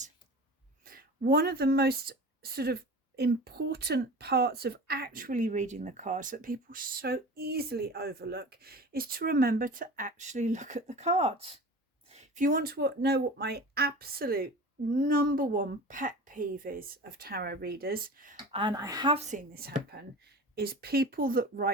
One of the most sort of important parts of actually reading the cards that people so easily overlook is to remember to actually look at the cards. If you want to know what my absolute number 1 pet peeve is of tarot readers, and I have seen this happen, is people that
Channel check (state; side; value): normal; both; correlation 0.36